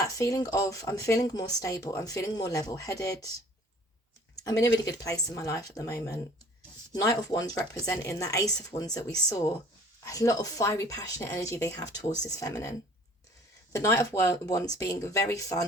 feeling of, I'm feeling more stable. I'm feeling more level-headed. I'm in a really good place in my life at the moment. Knight of Wands representing that Ace of Wands that we saw. A lot of fiery, passionate energy they have towards this feminine. The Knight of Wands being very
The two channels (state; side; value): normal; both; correlation 0.52